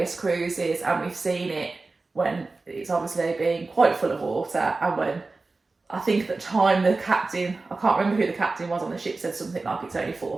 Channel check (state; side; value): quieter; left; 3.6 dB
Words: cruises, and we've seen it when it's obviously been quite full of water, and when I think at the time the captain, I can't remember who the captain was on the ship, said something like it's only